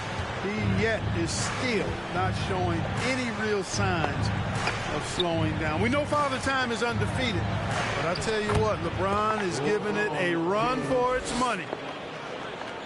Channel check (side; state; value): both; identical; correlation 1.00